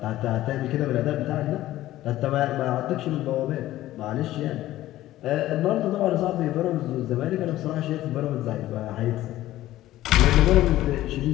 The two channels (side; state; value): right; quieter; 15.0 dB